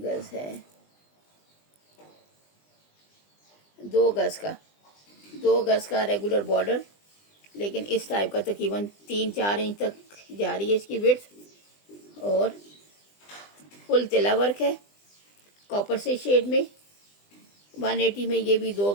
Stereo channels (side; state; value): right; late; 20 ms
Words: गज है? 2 गज का, 2 गज का रेगुलर बॉर्डर, लेकिन इस टाइप का तकरीबन 3-4 इंच तक जा रही है इसकी विड्थ, और फुल तिला वर्क है कॉपर से शेड में। 180 में ये भी 2